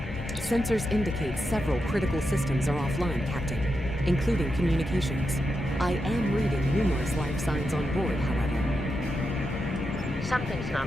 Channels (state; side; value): normal; both; correlation 0.86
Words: Sensors indicate several critical systems are offline, Captain, including communications. I am reading numerous life signs on board, however. Something's